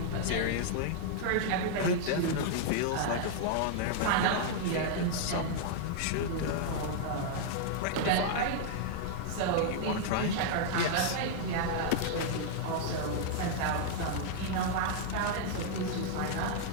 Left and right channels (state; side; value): different; both; correlation -0.01